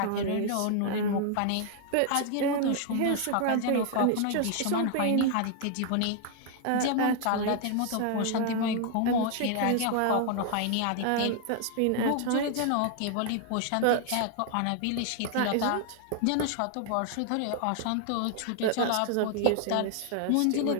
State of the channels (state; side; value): different; both; correlation 0.00